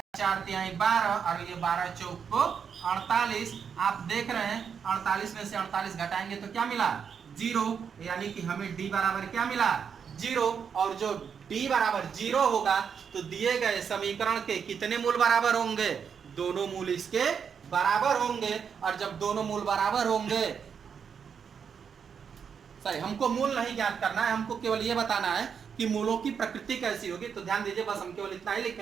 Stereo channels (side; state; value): left; quieter; 6.9 dB